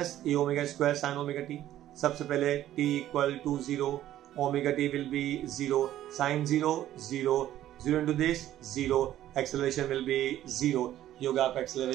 a omega square sine omega t. सबसे पहले t equal to 0, omega t will be 0, sine 0 0, 0 into this 0, acceleration will be 0। ये होगा आपका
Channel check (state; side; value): quieter; left; 12.9 dB